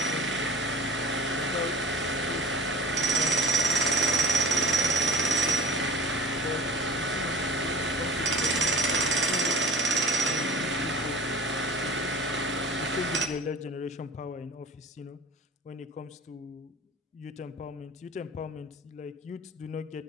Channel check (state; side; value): normal; both; correlation 0.40